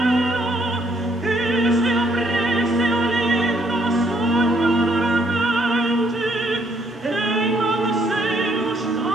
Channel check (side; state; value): both; normal; correlation 0.69